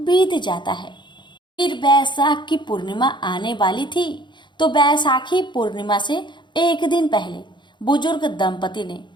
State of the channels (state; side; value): late; right; 0.22 ms